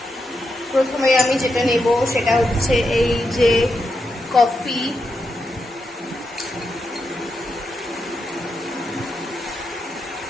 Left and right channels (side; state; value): both; normal; correlation 0.85